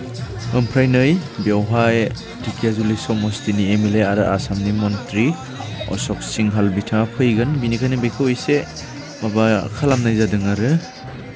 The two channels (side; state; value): both; identical; correlation 1.00